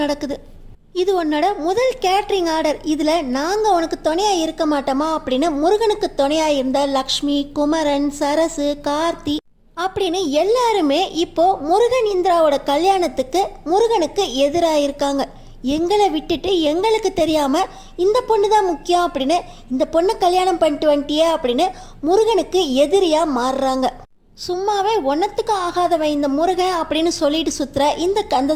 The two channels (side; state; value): both; identical; correlation 1.00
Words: நடக்குது. இது உன்னோட முதல் கேட்ரிங் ஆர்டர், இதில் நாங்கள் உனக்கு துணையாக இருக்க மாட்டோமா அப்படின்னு முருகனுக்கு துணையாக இருந்த லக்ஷ்மி, குமரன், சரசு, கார்த்தி அப்படின்னு எல்லாருமே இப்போ முருகன் இந்திராவோட கல்யாணத்துக்கு முருகனுக்கு எதிராக இருக்காங்க. எங்களை விட்டுட்டு எங்களுக்கு தெரியாமல் இந்த பொண்ணு தான் முக்கியம் அப்படின்னு, இந்த பொண்ணை கல்யாணம் பண்ணிட்டு வந்துட்டியே அப்படின்னு முருகனுக்கு எதிரியாக மாறுறாங்க. சும்மாவே ஒன்றத்துக்கும் ஆகாதவன் இந்த முருகன் அப்படின்னு சொல்லிட்டு சுற்றுற இந்த